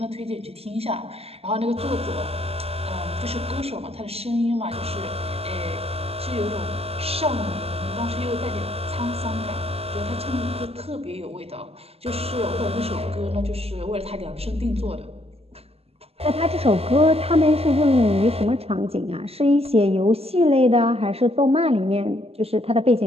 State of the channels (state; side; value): late; left; 0.29 ms